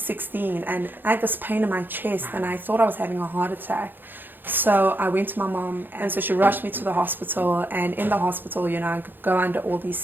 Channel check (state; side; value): late; left; 0.094 ms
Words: and I had this pain in my chest and I thought I was having a heart attack. So I went to my mom, and so she rushed me to the hospital, and in the hospital, you know, I go under all